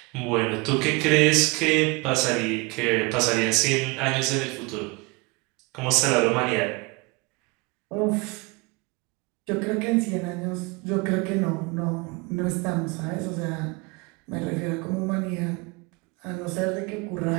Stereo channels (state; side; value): quieter; left; 26.8 dB